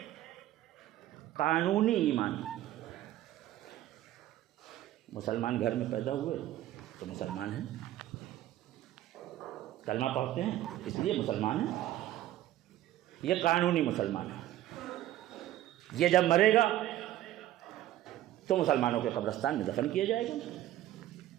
قانونی ایمان، مسلمان گھر میں پیدا ہوئے تو مسلمان ہیں، کلمہ پڑھتے ہیں اس لیے مسلمان ہیں، یہ قانونی مسلمان ہے۔ یہ جب مرے گا تو مسلمانوں کے قبرستان میں دفن کیا جائے گا،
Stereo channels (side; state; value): left; quieter; 13.8 dB